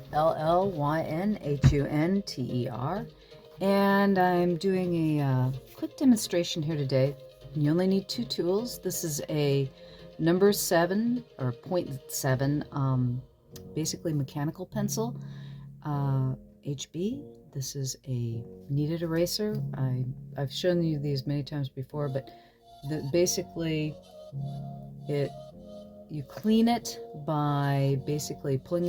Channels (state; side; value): identical; both; correlation 1.00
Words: L-L-Y-N-H-U-N-T-E-R, and I'm doing a quick demonstration here today. You only need two tools. This is a number 7 or 0.7, basically mechanical pencil, HB. This is a kneaded eraser. I've shown you these many times before, but basically you clean it by basically pulling